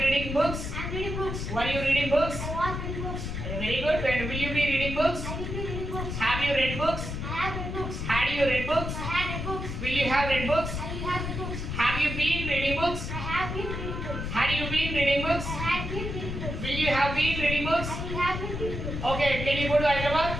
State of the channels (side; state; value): left; noise; rumble, 5 dB below the sound